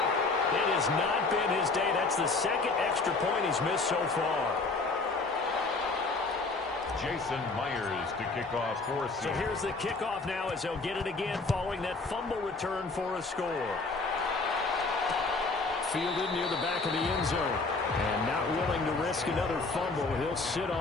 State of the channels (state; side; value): quieter; right; 3.7 dB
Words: It has not been his day. That's the second extra point he's missed so far. Jason Myers to kick off for Seattle. So here's the kickoff now as they'll get it again following that fumble return for a score. Fielded near the back of the end zone. And not willing to risk another fumble. He'll sit